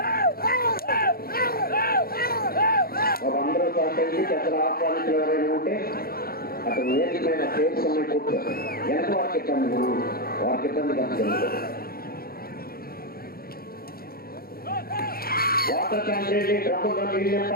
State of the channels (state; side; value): late; right; 0.44 ms